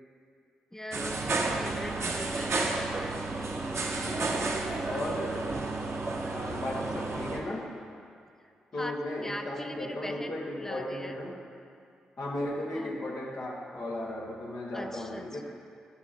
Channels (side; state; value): both; normal; correlation 0.78